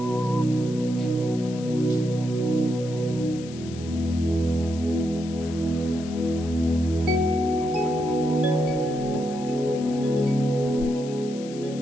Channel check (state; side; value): noise; left; hiss, 18 dB below the sound